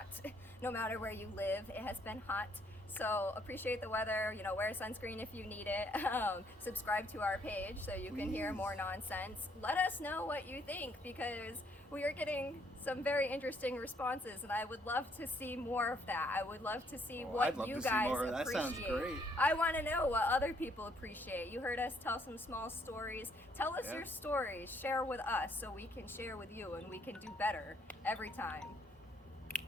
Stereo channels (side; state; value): both; normal; correlation 0.68